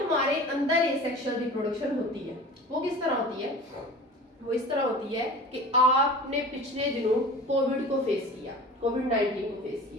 हमारे अंदर एसेक्सुअल रिप्रोडक्शन होती है, वो किस तरह होती है? वो इस तरह होती है कि आपने पिछले दिनों कोविड को फेस किया, कोविड-19 को फेस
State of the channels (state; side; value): normal; both; correlation 0.38